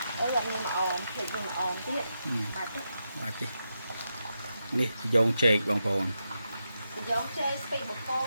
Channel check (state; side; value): inverted; both; correlation -0.86